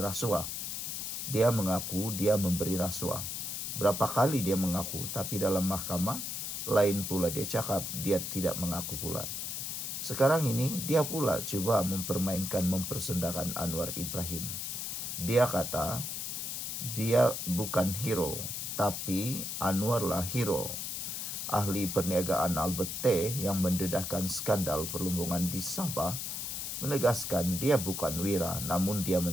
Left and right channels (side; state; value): left; noise; hiss, 4 dB below the sound